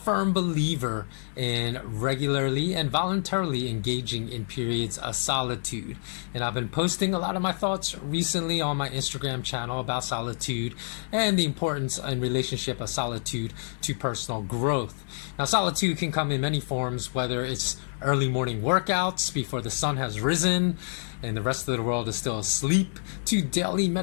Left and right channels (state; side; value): silent; right; digital silence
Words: believer in regularly and voluntarily engaging in periods of solitude. And I've been posting a lot of my thoughts recently on my Instagram channel about solitude and the importance and relationship of solitude to personal growth. Now, solitude can come in many forms, whether it's early morning workouts before the sun has risen and the rest of the world is still asleep, to daily